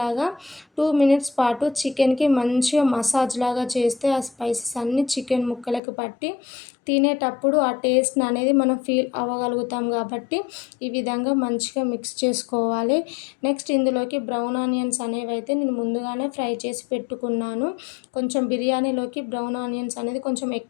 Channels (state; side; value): drops out; right; at 5.8 s